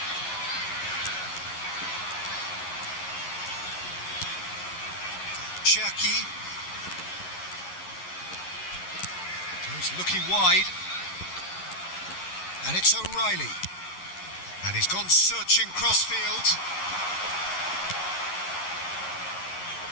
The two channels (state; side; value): late; right; 11 ms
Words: Cherky goes looking wide, and it's O'Reilly. And he's gone searching crossfield.